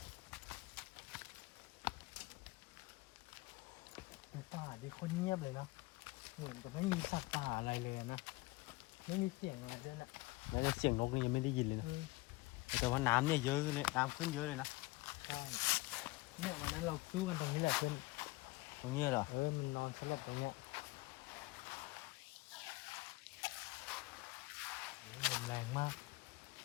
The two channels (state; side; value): quieter; right; 21.8 dB